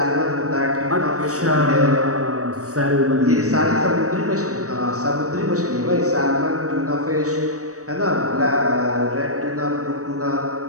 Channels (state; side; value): late; left; 0.66 ms